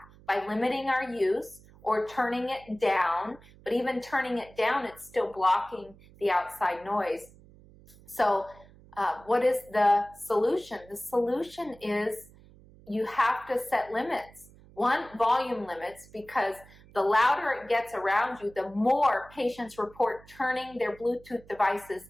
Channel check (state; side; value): noise; right; hum, 24 dB below the sound